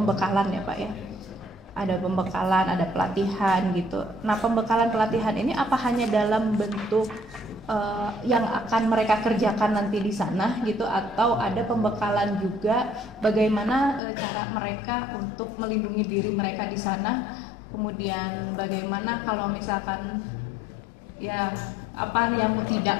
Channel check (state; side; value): drops out; right; at 14.0 s